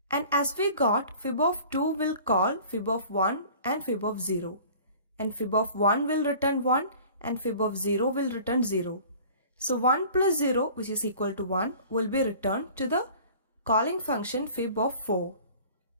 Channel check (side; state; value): both; inverted; correlation -0.46